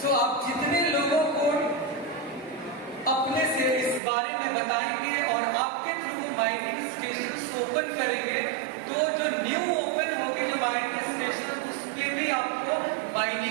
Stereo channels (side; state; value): left; drops out; at 4.0 s